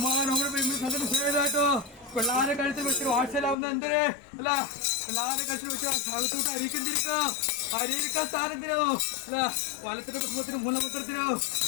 നമ്മുടെ സദസ്സായിട്ടോ പിള്ളാരെ കഴുത്തിൽ വെച്ചിട്ട് വാട്സലാവുന്ന എന്തേ അല്ല പിള്ളാരെ കഴുത്തിൽ വെച്ച് അകത്തോട്ട് അരിക്കന്തിരിക്കോ അരിയിരിക്കാൻ സ്ഥാനത്തിനോ അല്ല വലത്തിന്റെ കുടുംബത്തിനോ മൂലമന്ത്രത്തിനോ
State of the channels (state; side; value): drops out; right; at 3.6 s